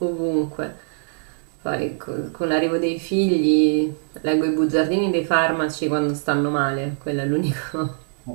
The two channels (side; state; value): left; silent; 64 dB below the other